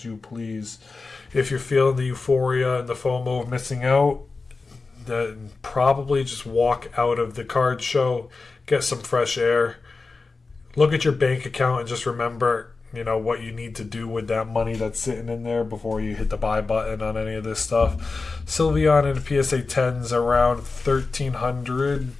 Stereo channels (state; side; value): quieter; right; 4.0 dB